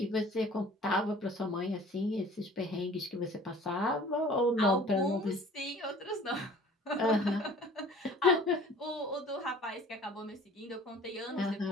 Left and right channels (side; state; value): both; normal; correlation 0.48